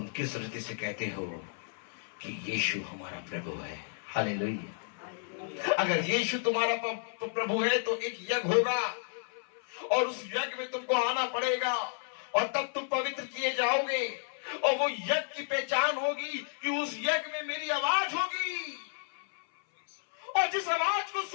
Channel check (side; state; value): right; silent; 56 dB below the other